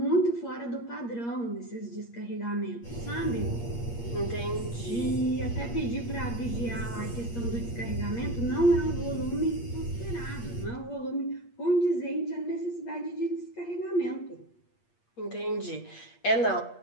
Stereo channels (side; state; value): right; late; 8.5 ms